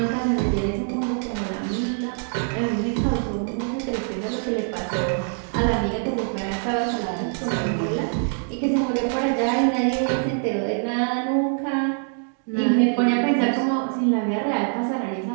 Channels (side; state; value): left; silent; 57 dB below the other